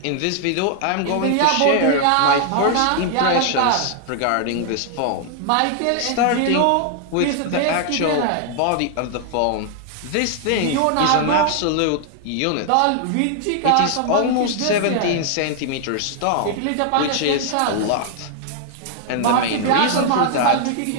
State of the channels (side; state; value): both; different; correlation 0.00